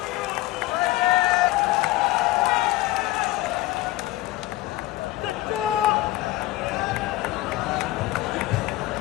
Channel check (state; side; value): quieter; right; 17.6 dB